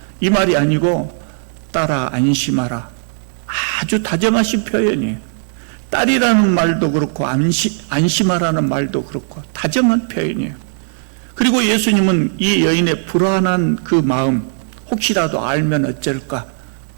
이 말이 아니고 따라 안심하라. 아주 다정하신 표현이에요. 딸이라는 말도 그렇고 안심하라는 말도 그렇고 다정한 표현이에요. 그리고 예수님은 이 여인의 불안한 그 마음 혹시라도 알면 어쩔까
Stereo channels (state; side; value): silent; left; digital silence